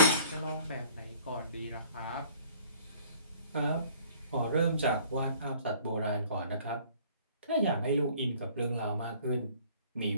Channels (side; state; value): both; inverted; correlation -0.53